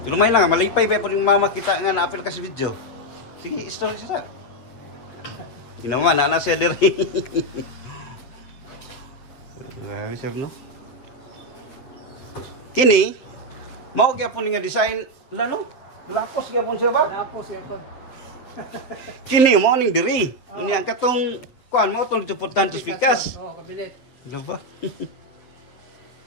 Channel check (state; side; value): late; right; 8.0 ms